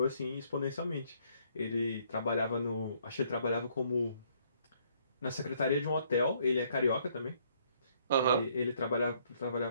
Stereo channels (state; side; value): inverted; both; correlation -0.66